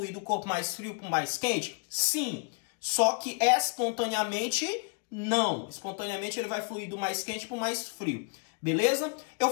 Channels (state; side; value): quieter; right; 35.5 dB